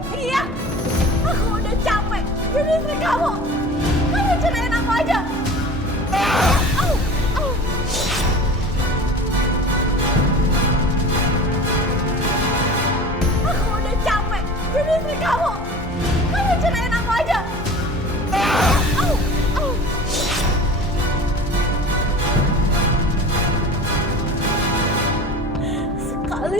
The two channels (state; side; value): normal; both; correlation 0.38